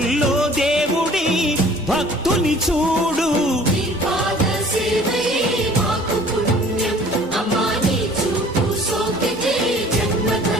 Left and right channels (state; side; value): normal; both; correlation 0.51